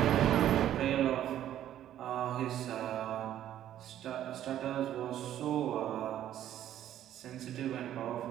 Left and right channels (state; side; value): quieter; left; 11.6 dB